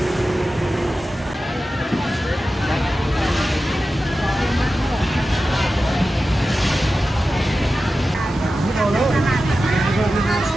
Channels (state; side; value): normal; both; correlation 0.93